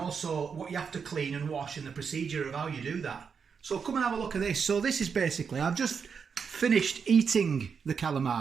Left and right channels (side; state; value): left; quieter; 6.2 dB